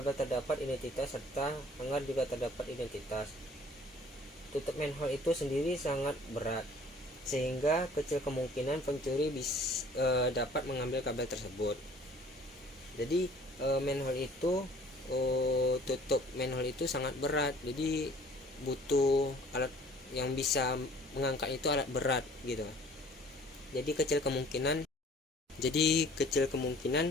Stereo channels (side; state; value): both; normal; correlation 0.52